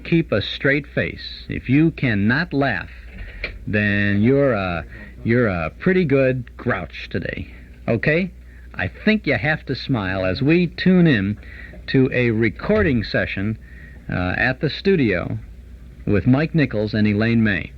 keep a straight face, if you cannot laugh, then you're a pretty good grouch today. Okay? I think you have to smile as we tune in to a recording session at the studio with Mike Nichols and Elaine May.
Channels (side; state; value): both; identical; correlation 1.00